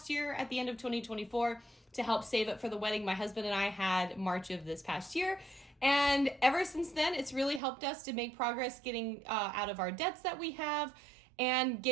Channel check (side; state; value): left; drops out; at 7.6 s